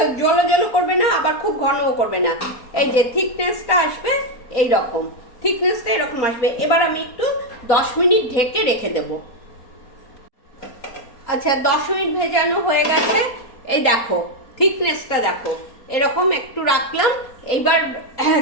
জলো জলো করবে না, আবার খুব ঘনও করবে না। এই যে থিকনেসটা আসবে, এই রকম থিকনেসটা এরকম আসবে। এবার আমি একটু 10 মিনিট ঢেকে রেখে দেব। আচ্ছা, 10 মিনিট ভেজানো হয়ে গেছে। এই দেখো থিকনেসটা দেখো, এরকম একটু রাখলাম। এইবার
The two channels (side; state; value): right; late; 4.2 ms